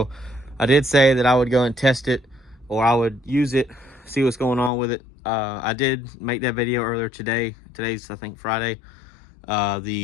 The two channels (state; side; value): drops out; right; at 4.7 s